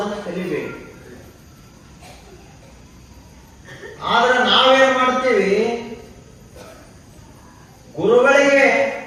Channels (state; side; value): identical; both; correlation 1.00